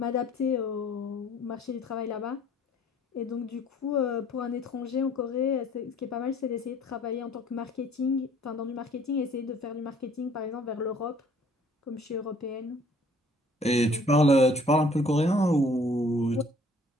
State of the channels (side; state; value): both; normal; correlation 0.57